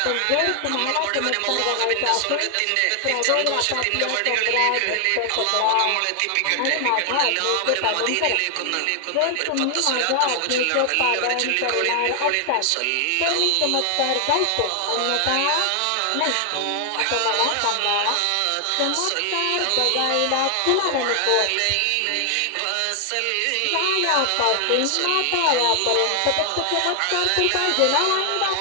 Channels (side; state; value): both; different; correlation 0.00